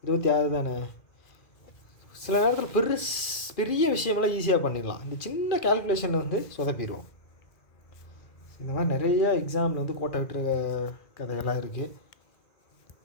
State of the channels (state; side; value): late; right; 2.4 ms